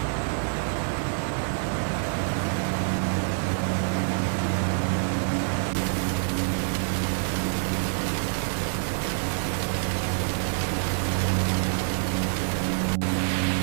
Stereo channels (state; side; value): silent; left; digital silence